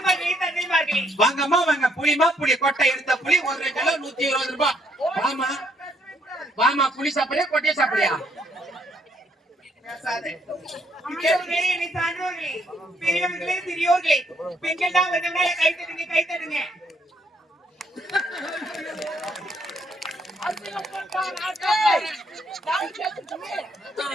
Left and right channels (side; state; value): both; normal; correlation 0.70